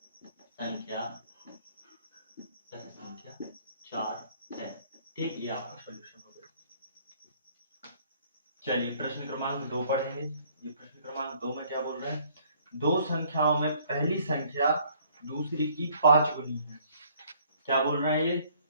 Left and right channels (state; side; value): inverted; both; correlation -0.61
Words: संख्या 4 है। ठीक, ये आपका सॉल्यूशन हो गया। चलिए प्रश्न क्रमांक 2 पढ़ेंगे। ये प्रश्न क्रमांक 2 में क्या बोल रहे हैं, दो संख्याओं में पहली संख्या दूसरी की 5 गुनी है। क्या बोल रहे हैं ये,